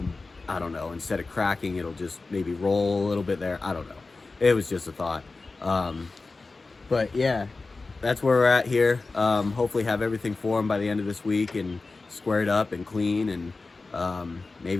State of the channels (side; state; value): right; quieter; 3.7 dB